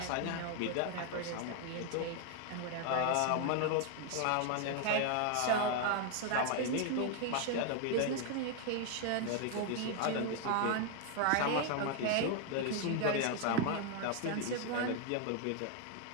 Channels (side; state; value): both; different; correlation 0.00